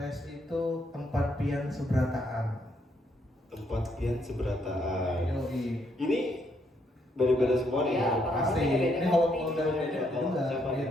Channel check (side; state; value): both; normal; correlation 0.74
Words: itu tempat pian seberataan. Tempat pian seberataan. Yoi. Ini beda-beda semua nih. Iya, ya? Pasti. Ini kalau dari Dede juga Siapa nih?